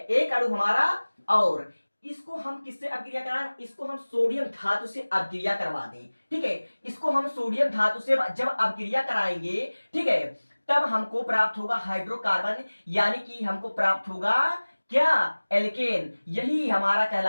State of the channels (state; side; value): inverted; both; correlation -1.00